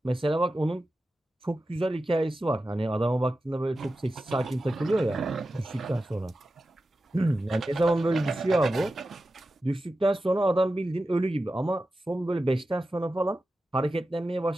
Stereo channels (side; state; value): both; normal; correlation 0.93